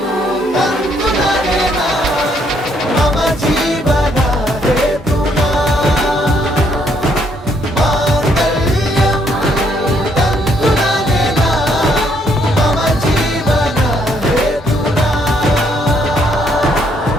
ತಂತು ನನೇನಾ ಮಮ ಜೀವನ ಹೇತುನಾ. ಮಾಂಗಲ್ಯಂ ತಂತು ನನೇನಾ ಮಮ ಜೀವನ ಹೇತುನಾ.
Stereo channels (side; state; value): both; normal; correlation 0.70